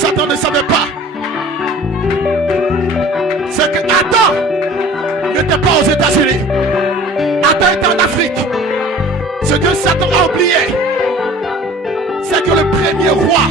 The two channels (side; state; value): both; normal; correlation 0.46